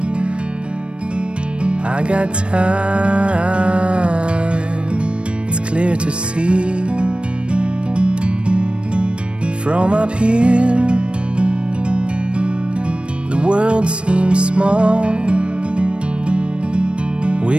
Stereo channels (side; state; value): left; late; 0.059 ms